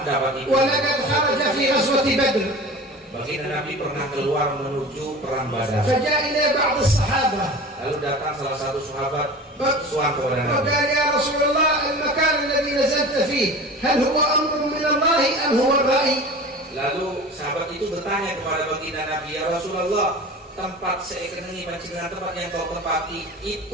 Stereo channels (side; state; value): both; normal; correlation 0.36